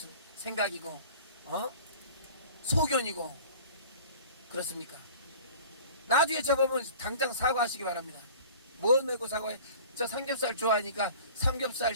생각이고 소견이고 그렇습니까? 나중에 저보면 당장 사과하시기 바랍니다. 뭐 내고 사과해? 저 삼겹살 좋아하니까 삼겹살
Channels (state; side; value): inverted; both; correlation -0.44